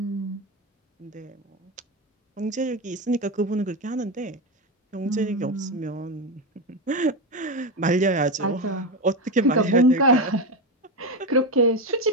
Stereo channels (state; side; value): normal; both; correlation 0.14